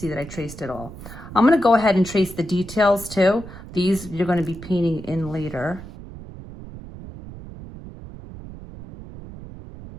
that I traced it all. I'm gonna go ahead and trace the details too. These you're gonna be painting in later.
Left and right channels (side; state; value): right; noise; rumble, 14 dB below the sound